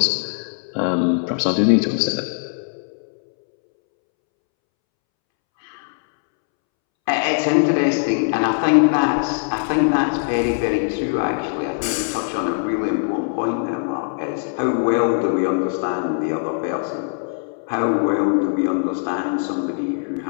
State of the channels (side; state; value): right; silent; 65 dB below the other